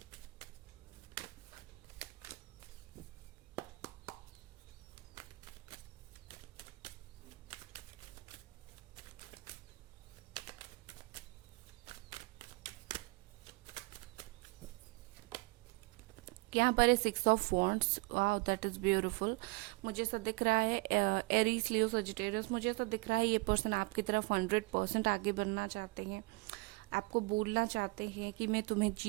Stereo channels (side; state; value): left; quieter; 25.6 dB